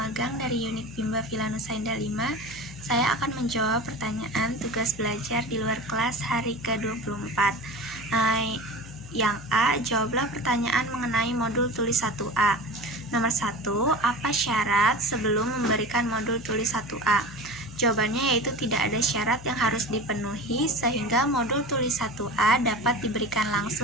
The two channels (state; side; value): noise; left; hum, 16 dB below the sound